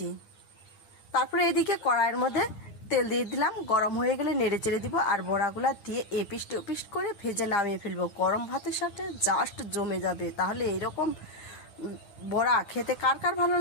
তারপরে এদিকে কড়াইয়ের মধ্যে তেল দিয়ে দিলাম, গরম হয়ে গেলে নেড়ে চেড়ে দিব আর বড়াগুলা দিয়ে এপিস্ট ওপিস্ট করে ভেজে নামিয়ে ফেলবো। গরম ভাতের সাথে জাস্ট জমে যাবে। তাহলে এইরকম বড়া খেতে কার কার ভালো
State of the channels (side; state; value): right; late; 9.9 ms